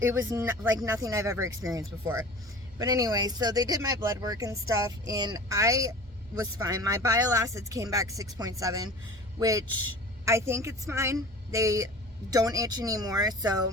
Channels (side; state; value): both; normal; correlation 0.39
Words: was like nothing I've ever experienced before. But anyway, so they did my blood work and stuff, and I was fine. My bile acids came back 6.7, which I think it's fine. They don't itch anymore, so,